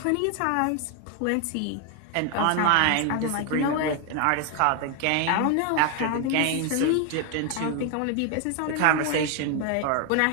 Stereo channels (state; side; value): different; both; correlation 0.01